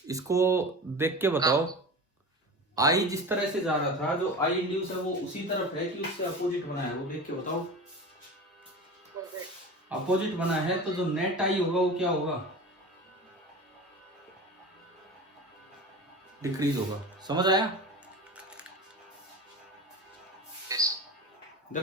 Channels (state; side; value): normal; both; correlation 0.31